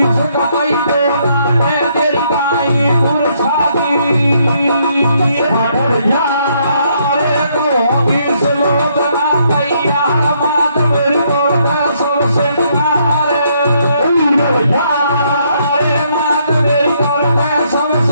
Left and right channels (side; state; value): both; inverted; correlation -0.71